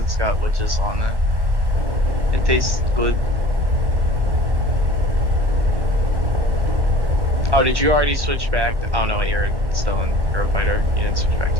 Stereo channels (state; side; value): late; left; 1.0 ms